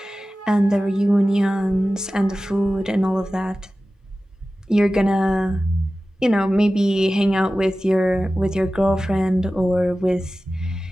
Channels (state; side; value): normal; both; correlation 0.95